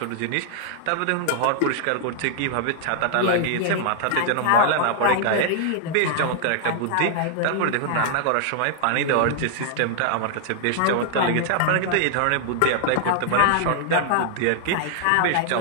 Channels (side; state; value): both; different; correlation 0.00